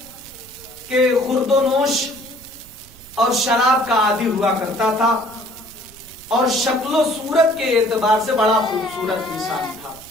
کہ خورد و نوش اور شراب کا عادی ہوا کرتا تھا اور شکل و صورت کے اعتبار سے بڑا خوبصورت انسان تھا.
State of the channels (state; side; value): noise; right; rumble, 23 dB below the sound